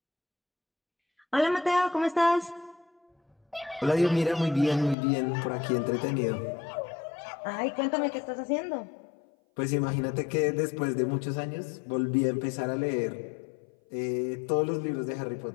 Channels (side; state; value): right; drops out; at 5.0 s